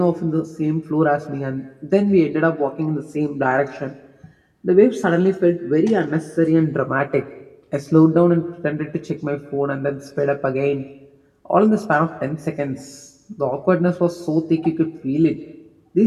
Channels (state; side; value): identical; both; correlation 1.00